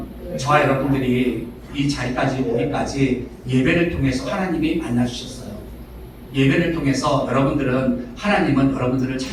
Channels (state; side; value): identical; both; correlation 1.00